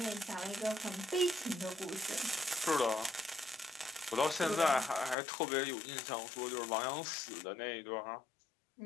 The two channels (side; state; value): right; drops out; at 5.2 s